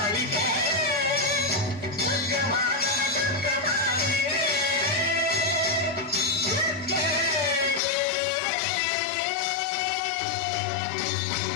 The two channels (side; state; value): right; drops out; at 7.8 s